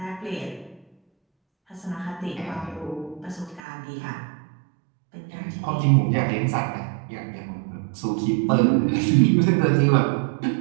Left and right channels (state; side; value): drops out; left; at 3.6 s